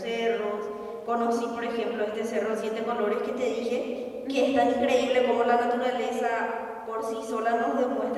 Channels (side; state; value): both; identical; correlation 1.00